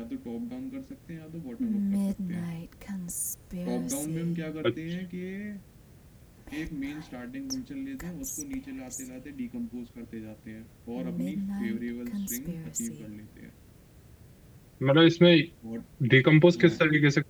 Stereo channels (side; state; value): both; identical; correlation 1.00